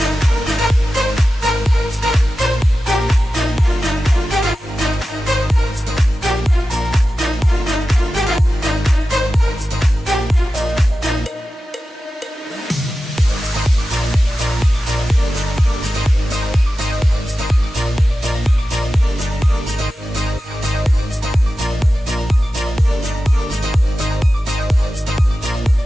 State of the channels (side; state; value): both; normal; correlation 0.93